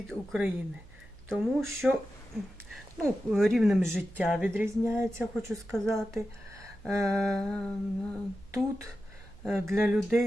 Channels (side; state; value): right; noise; hum, 22 dB below the sound